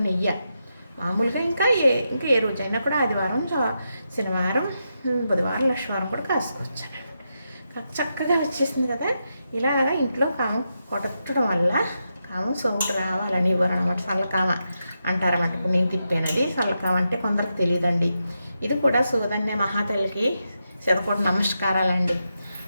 నెయ్యి. మామూలుగా ఇంకా ఏ రోజైనా కూడా ఆదివారం, శనివారం, బుధవారం, లక్షవారం కూడా కాసుకోవచ్చాను. చక్కగా వచ్చేసింది కదా. ఇలాగా ఇంట్లో కామం కొట్టడం వల్ల కామం సోముకు రావాలని ఇవ్వరు అనమాట. చల్లకామ అంటారన్నమాట. ఇప్పుడు నేను తిప్పానది చల్లకామ అంటే కొందరికి తెలియదండి. ఇది కూడా సూదన్య మహాతల్లికి శతకోటి నమస్కారాలండి.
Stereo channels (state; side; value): inverted; both; correlation -0.86